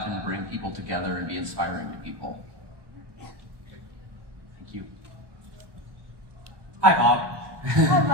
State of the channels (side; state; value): left; late; 1.2 ms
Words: can bring people together and be inspiring to people. Thank you. Hi, Bob.